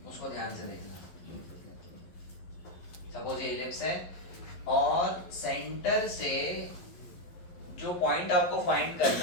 उसको ध्यान से देखना। सपोज ये एलिप्स है और सेंटर से जो पॉइंट आपको फाइंड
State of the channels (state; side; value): late; right; 11 ms